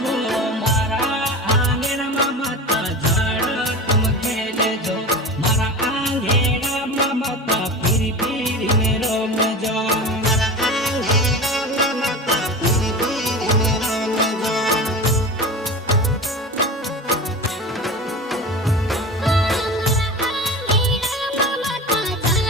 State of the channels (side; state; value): both; normal; correlation 0.31